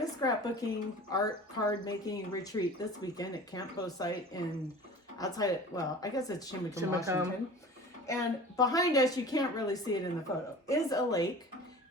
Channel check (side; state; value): both; normal; correlation 0.40